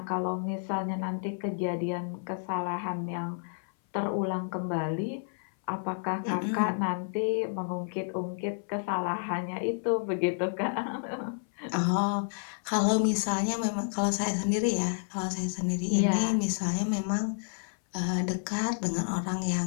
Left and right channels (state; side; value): silent; right; 58 dB below the other